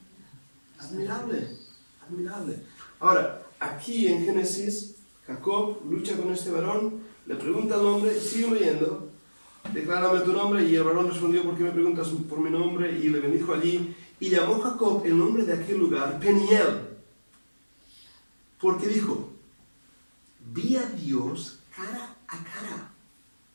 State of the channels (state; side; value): inverted; both; correlation -1.00